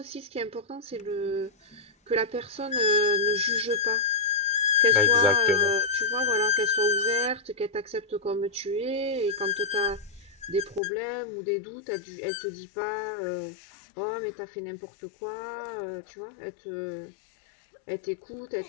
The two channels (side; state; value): right; drops out; at 10.8 s